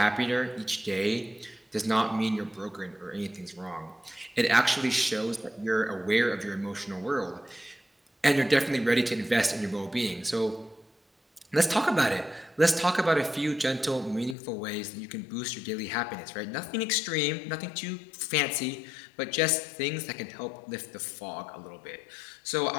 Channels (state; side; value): drops out; right; at 14.4 s